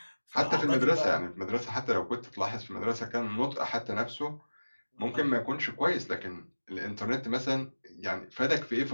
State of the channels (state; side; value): inverted; both; correlation -1.00